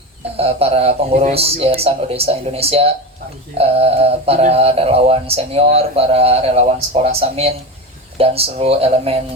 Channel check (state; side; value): normal; both; correlation 0.22